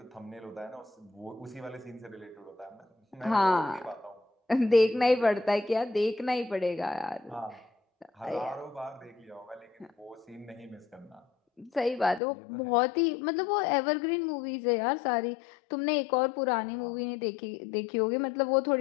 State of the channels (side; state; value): right; drops out; at 12.2 s